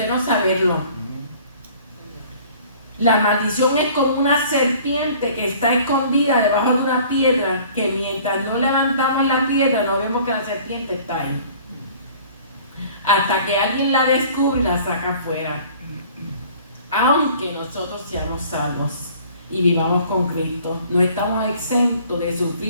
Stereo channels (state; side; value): inverted; both; correlation -0.51